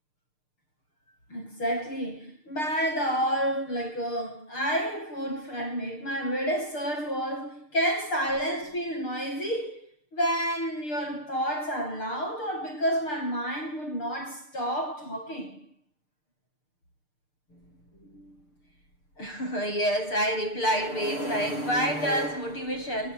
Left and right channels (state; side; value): late; right; 6.7 ms